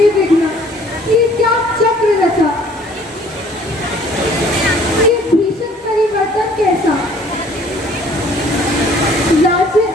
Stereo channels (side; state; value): both; normal; correlation 0.55